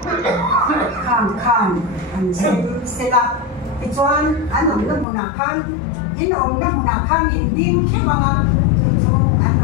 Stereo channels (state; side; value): drops out; right; at 5.1 s